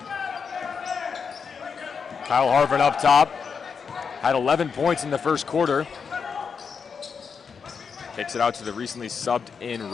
Kyle Harvin up top. Had 11 points in the first quarter. Kicks it out to the recently subbed in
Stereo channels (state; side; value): quieter; right; 6.0 dB